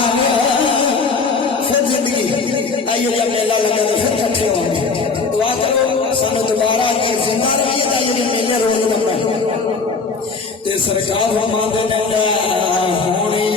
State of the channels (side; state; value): right; quieter; 4.5 dB